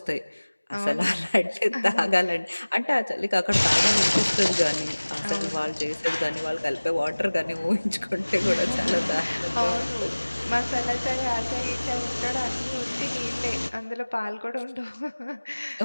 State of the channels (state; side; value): inverted; both; correlation -1.00